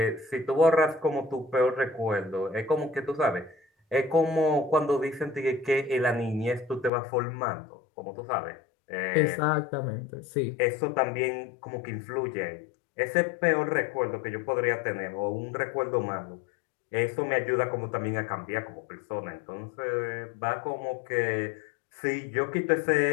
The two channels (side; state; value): right; drops out; at 6.9 s